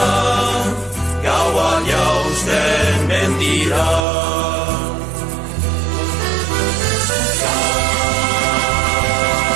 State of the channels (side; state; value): left; drops out; at 4.0 s